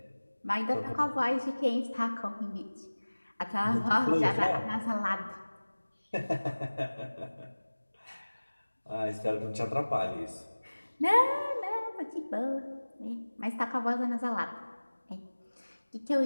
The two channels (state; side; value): inverted; both; correlation -1.00